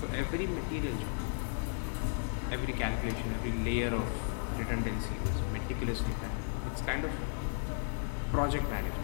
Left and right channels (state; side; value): silent; right; 55 dB below the other